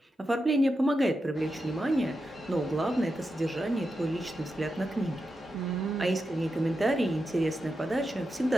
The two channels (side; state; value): both; normal; correlation 0.88